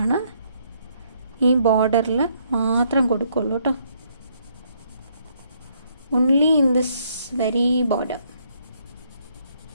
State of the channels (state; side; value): inverted; both; correlation -0.70